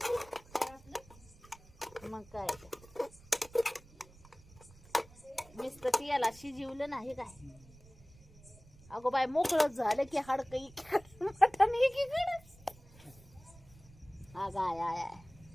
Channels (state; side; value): noise; right; rumble, 23 dB below the sound